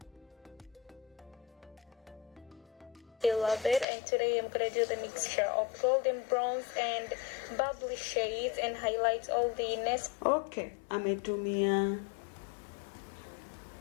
I love it, and today I'm gonna do the mixture of golden bronze and bubbly shades and highlight all the nest. Okay, ametumia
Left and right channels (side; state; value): right; drops out; at 3.9 s